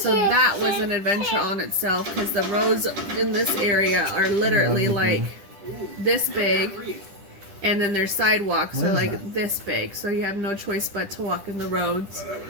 that was an adventure on itself because the roads in this area are literally like this big, and then their sidewalks are like this big, so you have no choice but to walk in the roads.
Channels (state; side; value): late; left; 10 ms